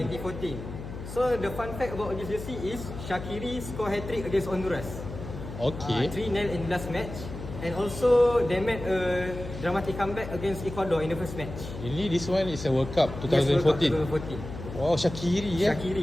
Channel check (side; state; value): left; noise; hum, 10 dB below the sound